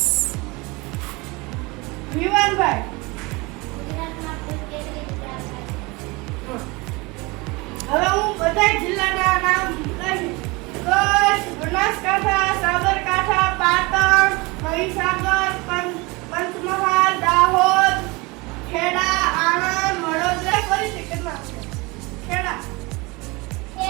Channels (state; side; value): quieter; left; 25.2 dB